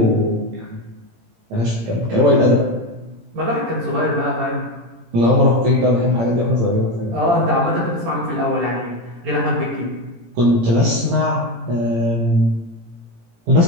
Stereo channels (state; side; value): late; left; 18 ms